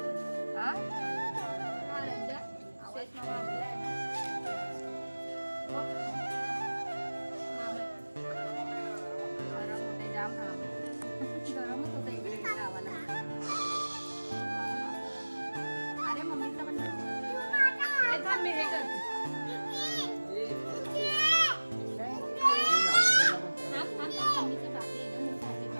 गरमच होतं इकडे गावाला. अरे मम्मीचा पण मी हे करते.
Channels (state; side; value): inverted; both; correlation -1.00